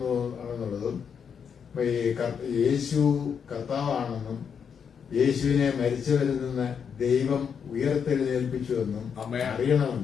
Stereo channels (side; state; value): right; quieter; 7.0 dB